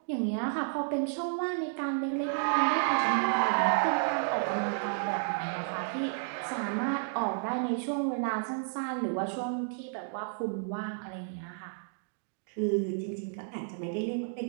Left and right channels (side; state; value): left; silent; digital silence